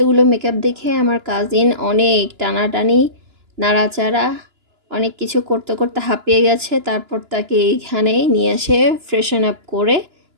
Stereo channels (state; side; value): late; left; 2.9 ms